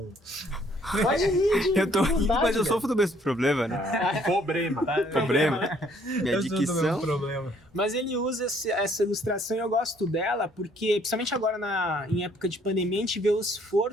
Pode rir de Eu tô rindo, vontade, mas eu cara. sofro do mesmo problema, né? Problema. Problema. Minha Eu sou do mesmo dicção. problema. Mas ele usa essa ilustração e eu gosto dela porque, principalmente agora em época de pandemia, a gente vê o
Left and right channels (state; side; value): normal; both; correlation 0.63